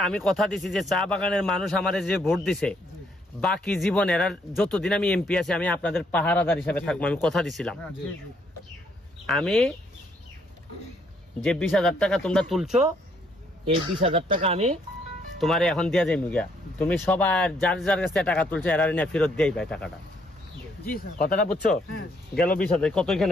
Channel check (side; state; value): both; normal; correlation 0.69